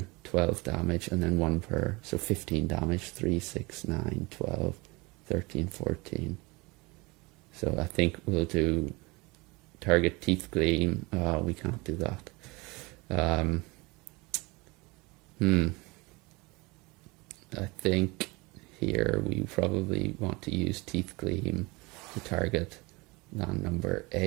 12 damage and then 1 per, so 15 damage, 3, 6, 9, 12, 13, 14. So I think we'll do target teeth gleam. We can't do that. I think here we probably want to use teeth gleam to target land number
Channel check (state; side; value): quieter; left; 25.1 dB